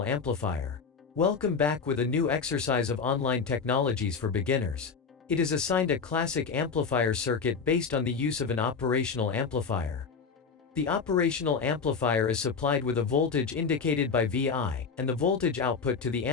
amplifier. Welcome back with a new exercise of online technologies for beginners. It is assigned a classic amplifier circuit based on the use of an operational amplifier. The operational amplifier is supplied with a voltage indicated by Vi, and the voltage output to the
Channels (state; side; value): quieter; right; 5.5 dB